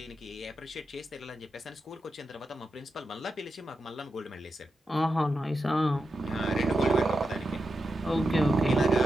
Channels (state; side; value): normal; both; correlation 0.88